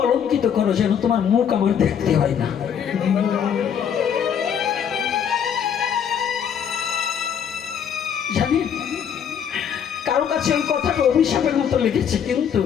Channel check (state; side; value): quieter; right; 8.1 dB